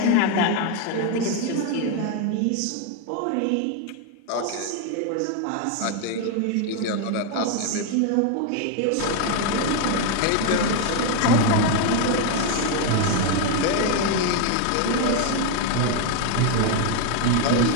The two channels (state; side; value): different; both; correlation 0.01